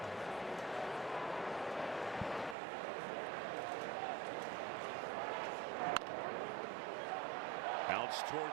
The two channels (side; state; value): left; drops out; at 2.6 s